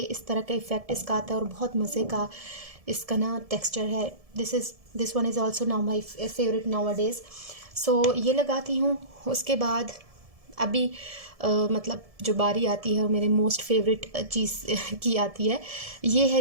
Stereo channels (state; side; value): late; left; 1.7 ms